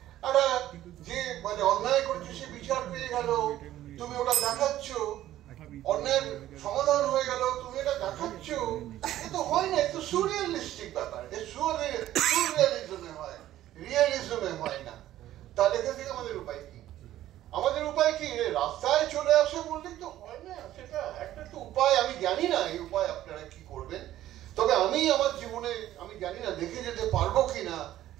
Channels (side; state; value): left; quieter; 13.5 dB